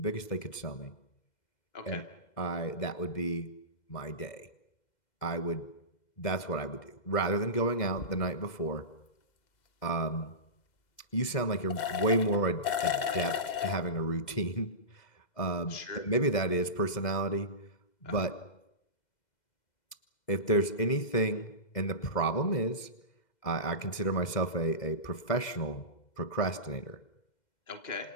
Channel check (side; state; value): right; late; 2.0 ms